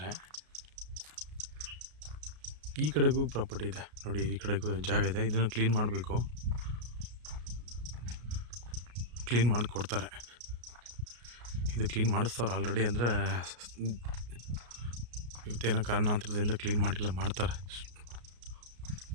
ಈ ಕಡೆಗೂ ಪ್ರಾಪರ್ಟಿ ಇದೆ ನೋಡಿ, ಈ ಕಡೆಗೂ ಜಾಗ ಇದೆ. ಇದನ್ನು ಕ್ಲೀನ್ ಮಾಡಬೇಕು, ಕ್ಲೀನ್ ಮಾಡಿ ಕೊಡ್ತಾರೆ. ಇದು ಕ್ಲೀನ್ ಮಾಡಿಸ್ತವ್ರು ಆಲ್ರೆಡಿ. ಅಂದರೆ ಇವತ್ತೇನೋ ಕಾರಣಾಂತರದಿಂದ ಕ್ಲೀನ್ ಮಾಡಿಲ್ಲ, ಮಾಡ್ತಾರೆ.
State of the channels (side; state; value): left; late; 33 ms